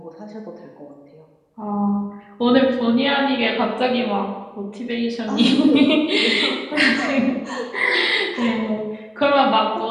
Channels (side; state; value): both; identical; correlation 1.00